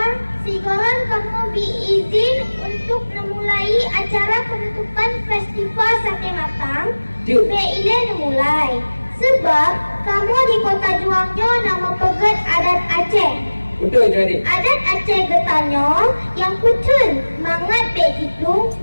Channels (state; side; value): inverted; both; correlation -1.00